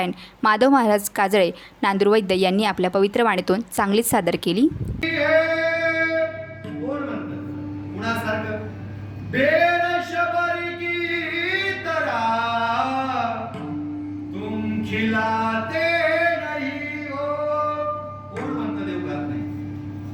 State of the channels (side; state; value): both; identical; correlation 1.00